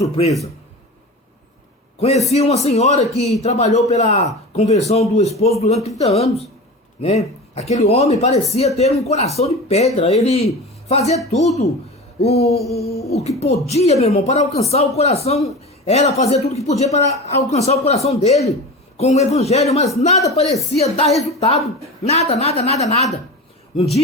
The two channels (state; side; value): normal; both; correlation 0.30